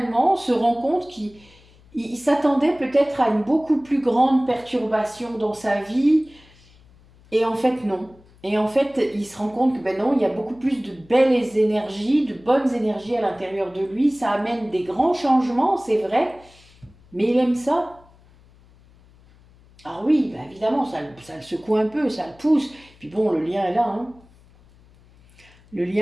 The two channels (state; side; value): noise; left; hum, 27 dB below the sound